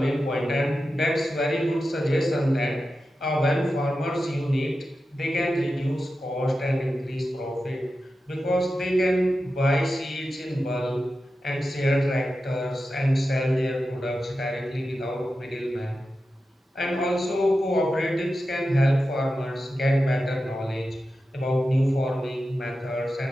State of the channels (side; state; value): both; normal; correlation 0.91